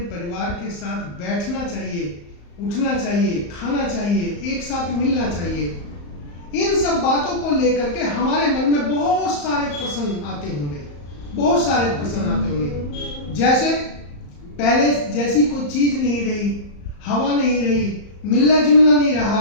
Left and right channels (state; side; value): late; right; 34 ms